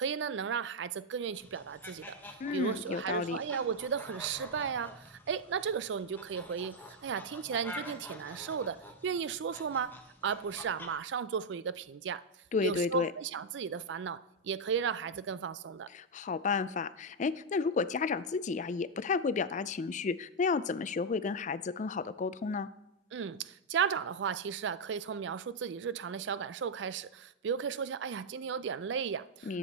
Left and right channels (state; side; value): normal; both; correlation -0.01